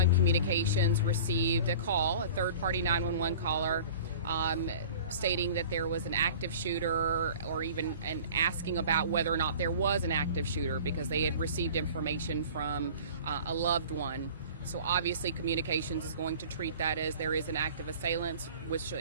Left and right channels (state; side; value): inverted; both; correlation -0.43